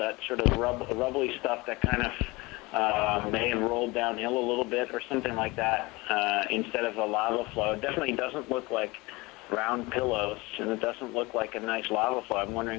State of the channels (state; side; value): quieter; right; 23.3 dB